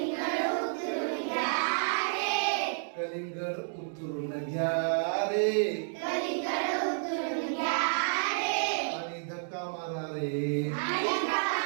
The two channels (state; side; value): silent; left; digital silence